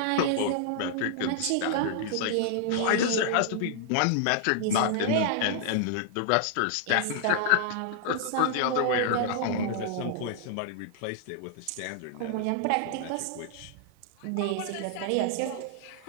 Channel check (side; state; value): both; different; correlation -0.01